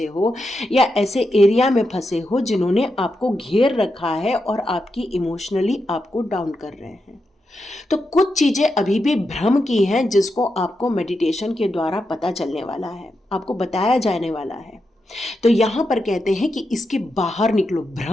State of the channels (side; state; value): both; normal; correlation 0.86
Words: हो, या ऐसे एरिया में फंसे हो जिन्होंने आपको घेर रखा है और आपकी इमोशनली आपको डाउन कर रहे हैं। तो कुछ चीजें अभी भी भ्रम की हैं जिसको आपको मेडिटेशन के द्वारा पता चलने वाला है, आपको बताया जाने वाला है। तो यहां पर कहते हैं कि इसके बाहर निकलो,